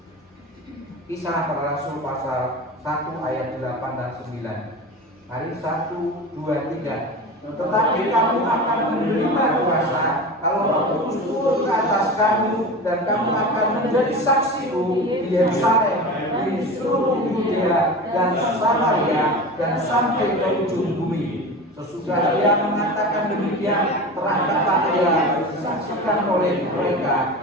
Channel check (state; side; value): normal; both; correlation 0.30